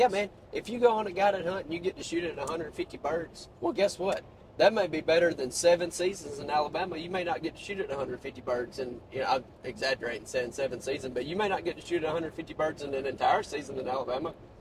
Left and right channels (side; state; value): both; identical; correlation 1.00